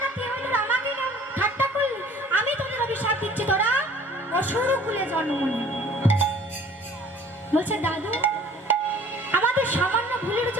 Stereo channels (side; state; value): both; normal; correlation 0.51